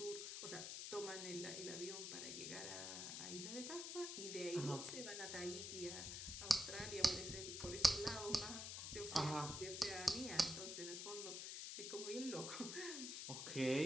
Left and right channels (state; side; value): noise; left; hiss, 4 dB below the sound